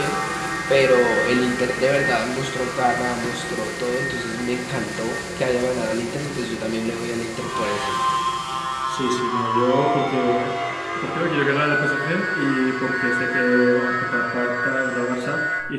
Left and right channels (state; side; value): identical; both; correlation 1.00